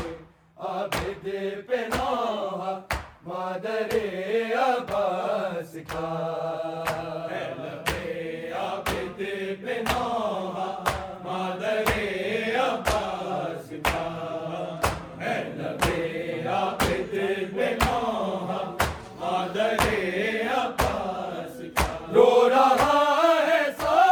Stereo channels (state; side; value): identical; both; correlation 1.00